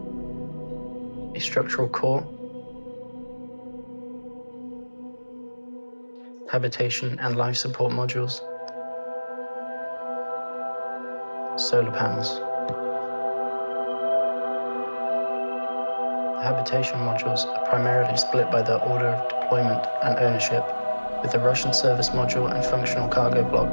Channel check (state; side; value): inverted; both; correlation -1.00